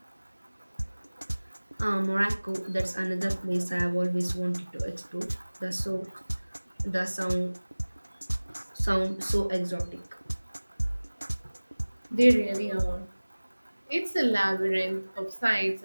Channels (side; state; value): both; inverted; correlation -1.00